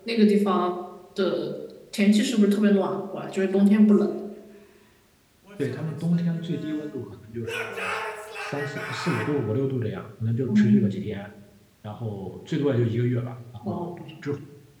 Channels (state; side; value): identical; both; correlation 1.00